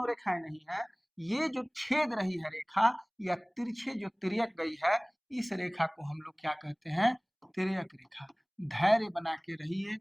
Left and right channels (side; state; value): both; identical; correlation 1.00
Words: रेखाएं नहीं है, ये जो छेद रही है रेखा या तिरछे जो तिर्यक गई है, इस रेखा को हम लोग क्या कहते हैं? तिर्यक रेखा। धैर्य बना के रहिए,